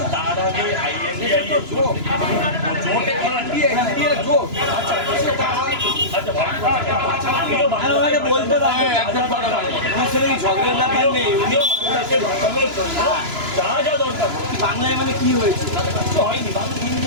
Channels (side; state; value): left; late; 2.9 ms